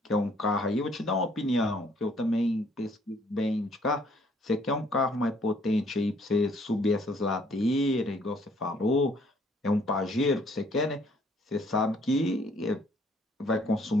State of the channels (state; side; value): normal; both; correlation 0.63